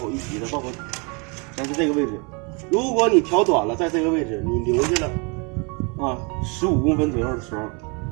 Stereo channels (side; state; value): left; quieter; 32.5 dB